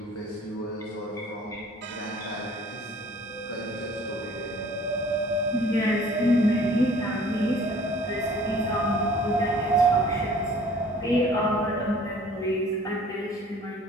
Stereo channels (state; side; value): normal; both; correlation 0.51